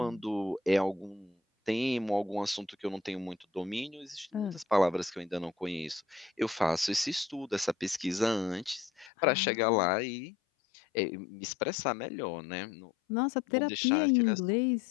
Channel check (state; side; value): drops out; right; at 9.1 s